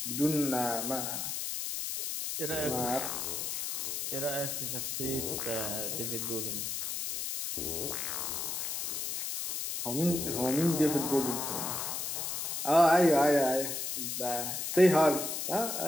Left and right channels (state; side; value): noise; left; hiss, 3 dB below the sound